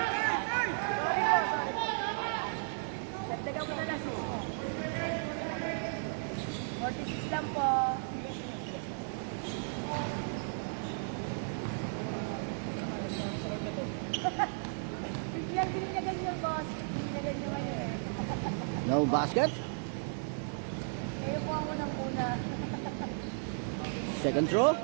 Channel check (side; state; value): left; silent; 55 dB below the other